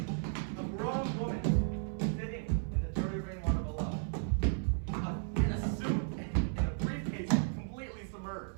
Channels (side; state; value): left; silent; 55 dB below the other